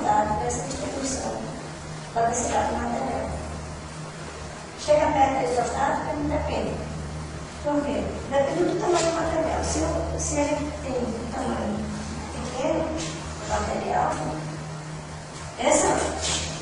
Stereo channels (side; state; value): both; identical; correlation 1.00